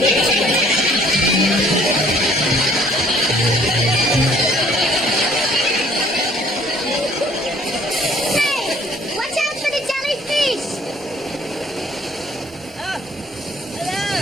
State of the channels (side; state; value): both; normal; correlation 0.58